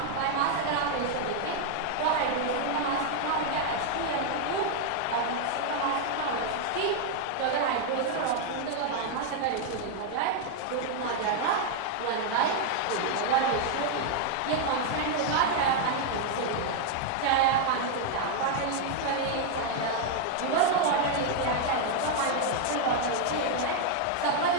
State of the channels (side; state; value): both; different; correlation 0.00